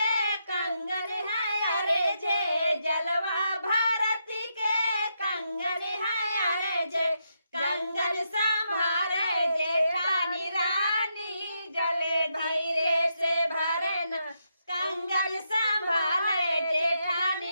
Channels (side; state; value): both; inverted; correlation -0.81